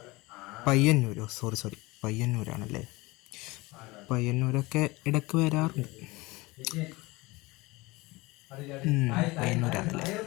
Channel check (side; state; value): right; quieter; 22.5 dB